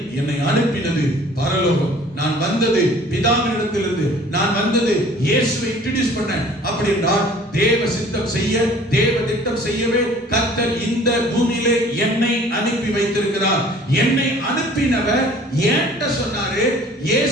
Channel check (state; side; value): normal; both; correlation 0.50